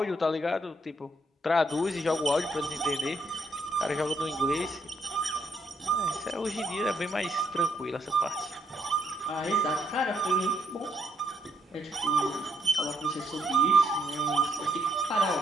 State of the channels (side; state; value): both; normal; correlation 0.74